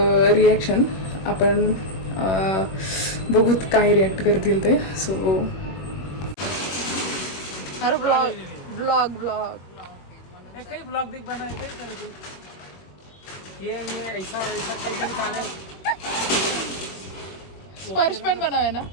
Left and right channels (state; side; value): late; right; 21 ms